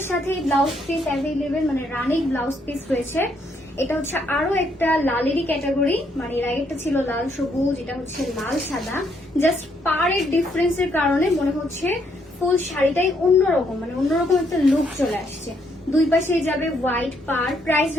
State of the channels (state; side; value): normal; both; correlation 0.72